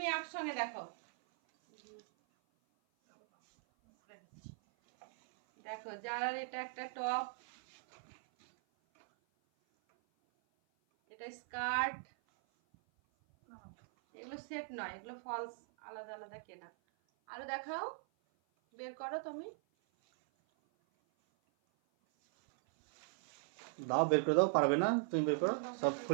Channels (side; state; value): left; silent; 51 dB below the other